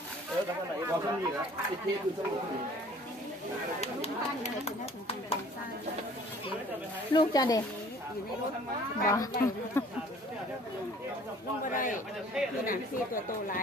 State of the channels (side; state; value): both; normal; correlation 0.52